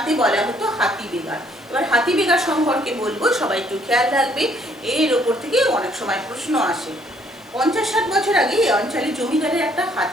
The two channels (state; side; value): noise; left; hiss, 29 dB below the sound